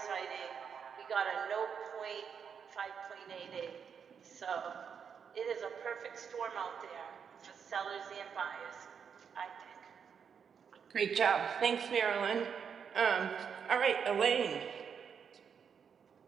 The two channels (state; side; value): quieter; left; 7.0 dB